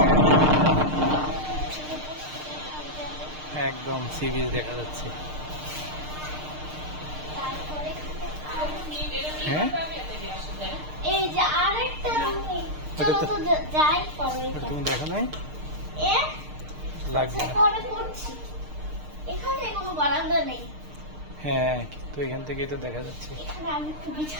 একদম সি বিচ দেখা যাচ্ছে। তারপরে হ্যাঁ, এই যে আরেকটা রুম, ওটা চলো তো- তো যাই পরে ওটা তুমি দেখো নাই? এ লাগবে না। পরে করছি। এখানে কোনো বারান্দা নেই। হ্যাঁ, কিন্তু এখান থেকেই তো দেখা যাচ্ছে। এখানে আমি একটু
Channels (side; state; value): left; late; 6.6 ms